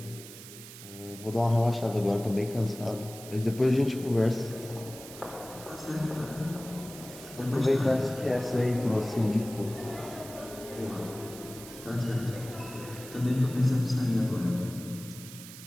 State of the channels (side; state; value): right; noise; hiss, 15 dB below the sound